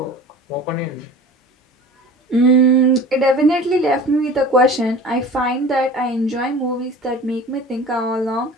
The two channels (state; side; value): normal; both; correlation 0.40